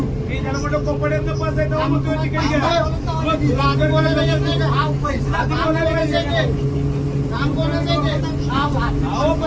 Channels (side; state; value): both; identical; correlation 1.00